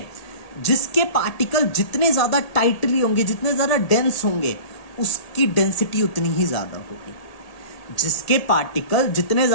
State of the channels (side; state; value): right; late; 1.8 ms